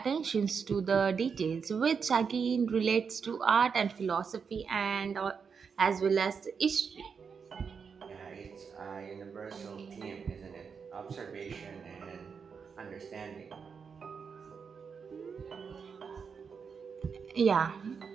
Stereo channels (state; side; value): quieter; left; 6.0 dB